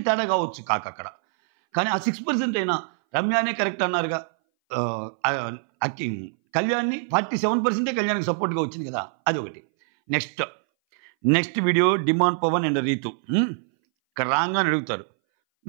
తేడా కావచ్చు అక్కడ. కానీ ఆ 6% అయినా రమ్యానే కరెక్ట్ అన్నారుగా. కళ్యాణ్ని 47% కళ్యాణ్కి సపోర్ట్గా వచ్చింది కదా, అది ఒకటి. Next video demand Pawan and Rithu ఇక్కడ రాగానే అడుగుతారు,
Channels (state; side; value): silent; left; 60 dB below the other